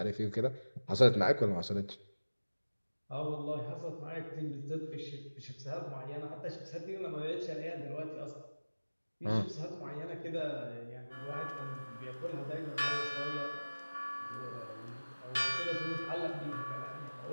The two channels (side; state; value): both; inverted; correlation -1.00